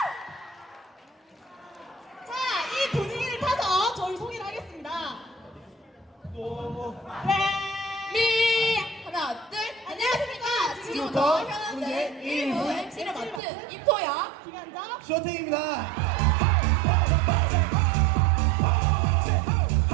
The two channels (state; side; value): drops out; left; at 13.4 s